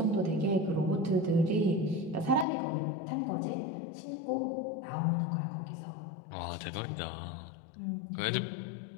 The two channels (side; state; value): right; drops out; at 2.5 s